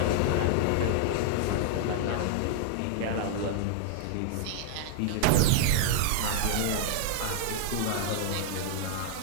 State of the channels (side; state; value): both; different; correlation -0.01